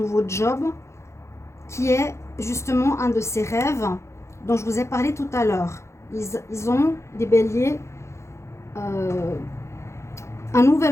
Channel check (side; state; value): right; late; 0.14 ms